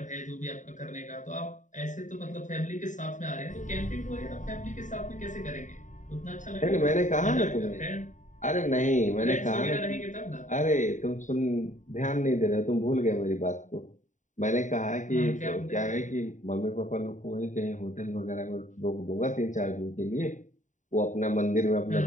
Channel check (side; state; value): right; late; 0.36 ms